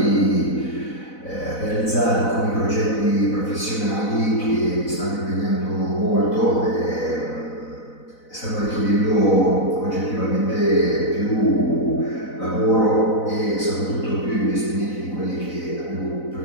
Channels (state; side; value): late; right; 4.0 ms